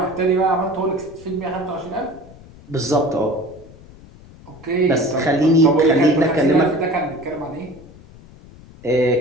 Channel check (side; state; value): left; noise; rumble, 21 dB below the sound